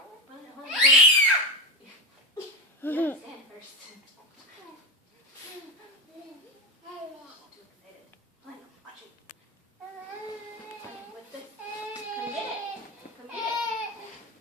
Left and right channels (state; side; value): normal; both; correlation 0.16